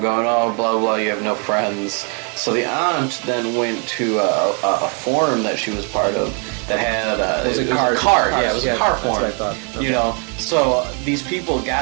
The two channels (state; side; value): quieter; left; 38.4 dB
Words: going, oh, blah, blah, you have no friends. So the aunt then went to a forum that she was part of that had... It was a card. card. Yeah, it was a car forum. That's what I thought. You know, so these people